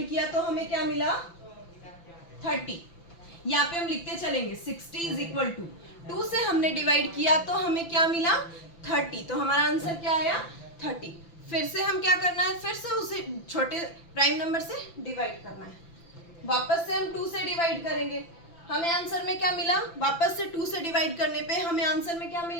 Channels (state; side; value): late; right; 5.9 ms